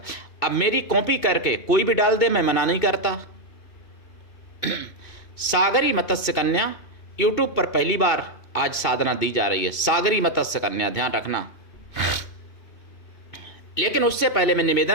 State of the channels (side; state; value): right; late; 2.5 ms